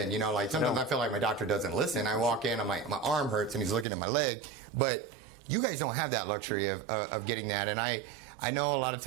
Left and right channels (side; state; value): left; drops out; at 3.9 s